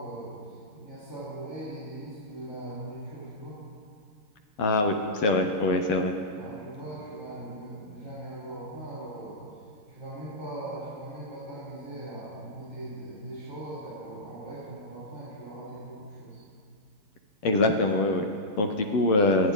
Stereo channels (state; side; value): late; right; 9.6 ms